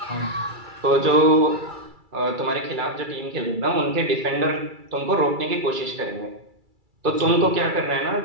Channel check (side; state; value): left; late; 2.3 ms